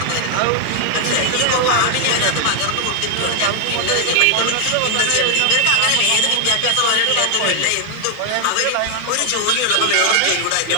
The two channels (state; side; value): different; both; correlation 0.00